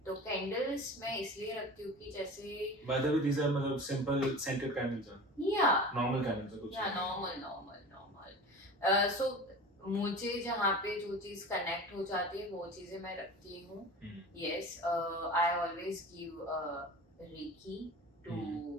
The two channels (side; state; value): both; normal; correlation 0.35